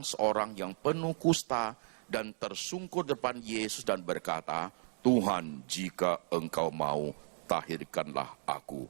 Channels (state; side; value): silent; left; digital silence